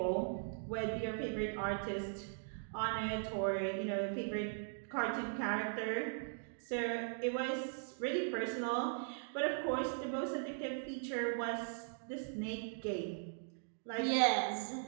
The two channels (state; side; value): silent; left; digital silence